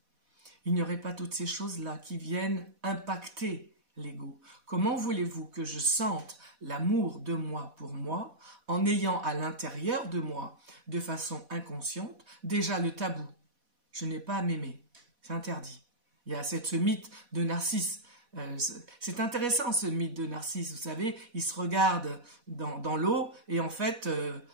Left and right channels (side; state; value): left; late; 4.1 ms